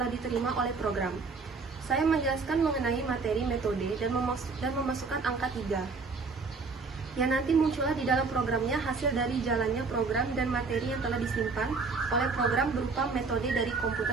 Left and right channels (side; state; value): left; quieter; 4.4 dB